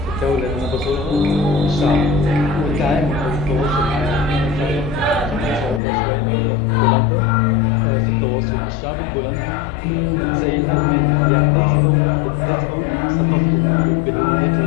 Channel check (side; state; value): right; drops out; at 5.8 s